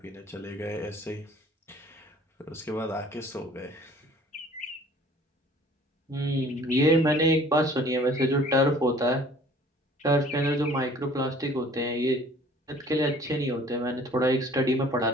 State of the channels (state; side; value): normal; both; correlation 0.52